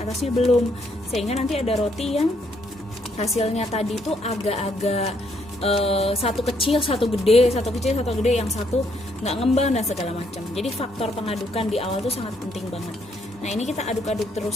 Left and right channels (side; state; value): both; normal; correlation 0.71